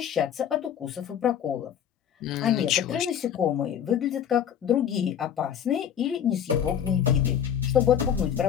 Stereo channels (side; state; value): right; quieter; 9.0 dB